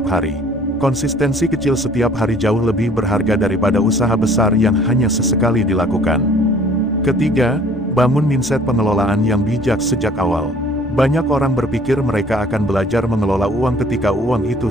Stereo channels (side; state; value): both; normal; correlation 0.54